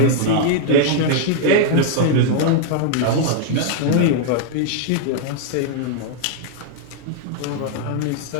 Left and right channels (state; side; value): different; both; correlation -0.01